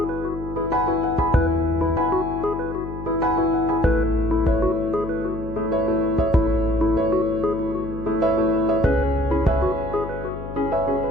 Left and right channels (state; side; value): noise; left; hum, 10 dB below the sound